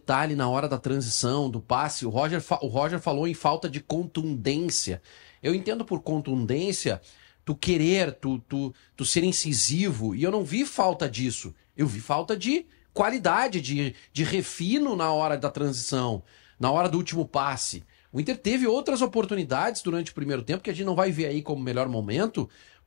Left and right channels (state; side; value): silent; right; digital silence